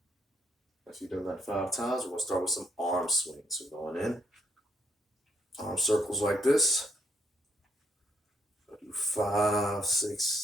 If you've done that 5 times, we're going to start with some arm swings. We're going in. Arm circles like this. I'll do 5,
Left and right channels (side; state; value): both; normal; correlation 0.74